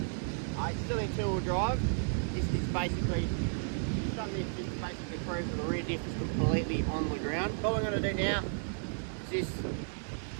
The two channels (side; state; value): left; silent; digital silence